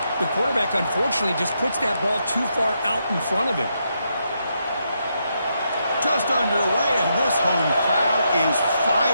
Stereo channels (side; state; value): both; inverted; correlation -0.80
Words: The quarterback, unfortunately, just puts that ball too far out in front of him. Just underway, and this home crowd is